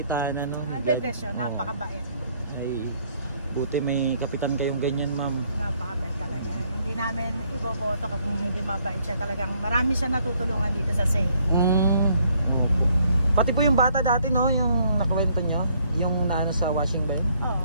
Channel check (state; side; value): inverted; both; correlation -0.67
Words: no. I-bless siya, napakabait. Ay, buti may kapitan kayong ganyan, ma'am. Napakabait talaga. Hindi namin iboboto kung hindi mabait siya. Talagang marami siya natutulungan dito sa CAE. Pati po yung bata dati, no, yung nakwento nyo, yung naano sa washing ba yun?